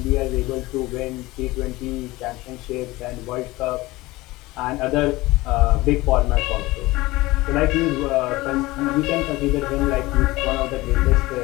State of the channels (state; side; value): quieter; right; 20.1 dB